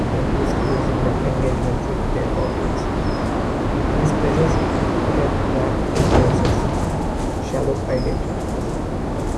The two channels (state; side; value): identical; both; correlation 1.00